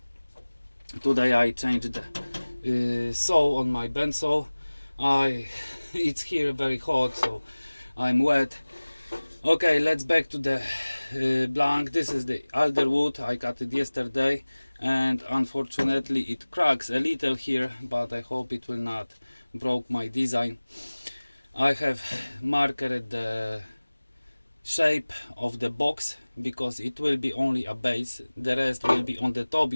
Today I changed the saw on my Bandsaw. It's here very hot, so I'm wet. Okay, let's back to the blank. This is the alder wood. I cut it yesterday and unfortunately it cracks a little here, but I hope it will not broke my design. I have marked the shape of the box because it will be only a base, the rest will be on the top.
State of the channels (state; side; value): inverted; both; correlation -1.00